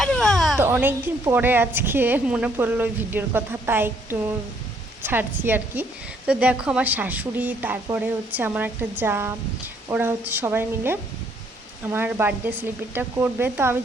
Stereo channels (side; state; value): both; normal; correlation 0.67